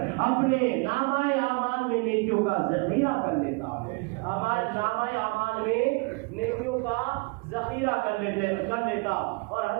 اپنے نامہ اعمال میں نیکیوں کا ذخیرہ کر لیتا، نامہ اعمال میں نیکیوں کا ذخیرہ کر لیتا۔ اور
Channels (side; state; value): left; quieter; 29.2 dB